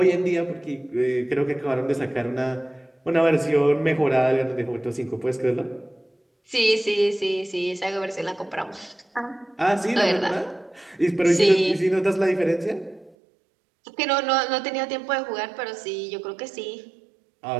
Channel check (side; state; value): left; drops out; at 13.2 s